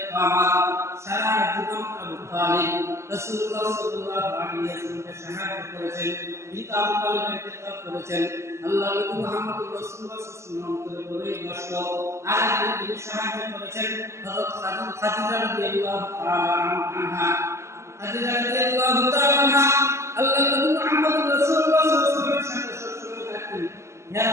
আমার। সারা জীবন আবু তালিব রাসূলুল্লাহ সাল্লাল্লাহু আলাইহি ওয়াসাল্লামকে সাহায্য করেছেন, কিন্তু আবু তালিবের ইন্তেকাল করেছেন। আল্লাহ নবী মুহাম্মদ রাসূলুল্লাহ সাল্লাল্লাহু আলাইহি ওয়াসাল্লাম করে কষ্ট আরেকজন তিনি সাহায্য করেছেন হযরত খাদিজা রাদিয়াল্লাহু তাআলা আনহা। খাদিজা রাদিয়াল্লাহু তাআলা আনহা আল্লাহ নবী মুহাম্মদ রাসূলুল্লাহ সাল্লাল্লাহু আলাইহি ওয়াসাল্লামের সাথে সবসময় থাকতেন।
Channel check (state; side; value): late; left; 0.13 ms